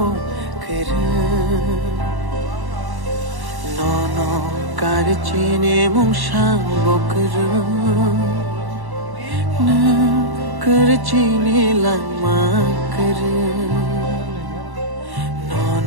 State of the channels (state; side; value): late; left; 1.1 ms